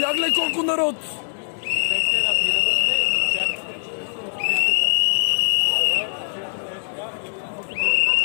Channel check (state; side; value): silent; right; 64 dB below the other